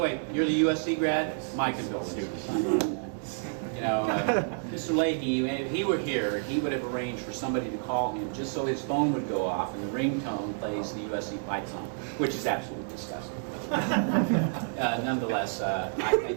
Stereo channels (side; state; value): left; silent; digital silence